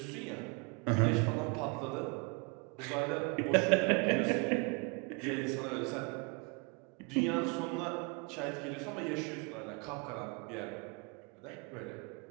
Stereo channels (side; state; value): left; quieter; 31.9 dB